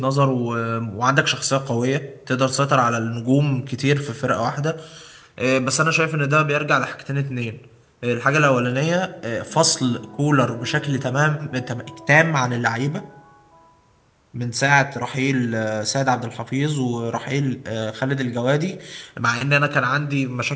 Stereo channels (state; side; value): identical; both; correlation 1.00